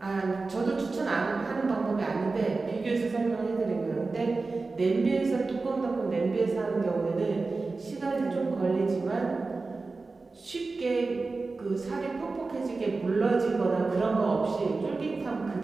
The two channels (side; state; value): left; quieter; 3.8 dB